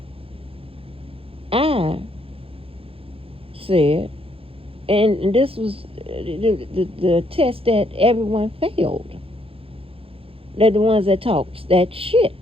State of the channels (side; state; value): left; late; 0.27 ms